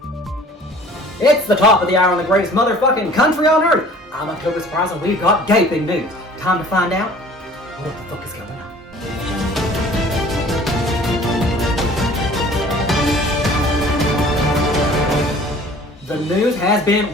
It's the top of the hour on the greatest motherfucking country on earth. I'm October Surprise and we've got gaping news. Time to find out what the fuck is going on. The news has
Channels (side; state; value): both; normal; correlation 0.49